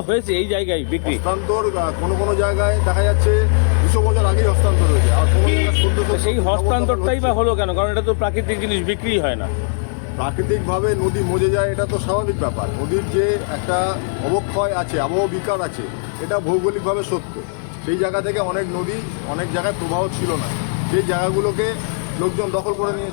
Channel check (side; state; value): right; silent; digital silence